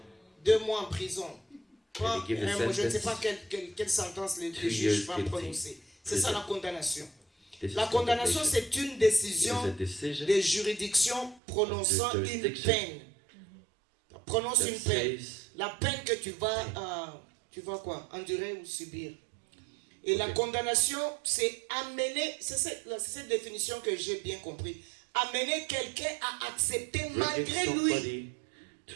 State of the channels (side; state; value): left; drops out; at 11.4 s